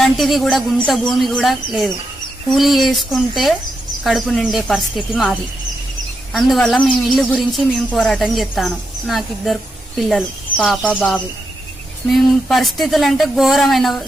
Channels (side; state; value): both; normal; correlation 0.84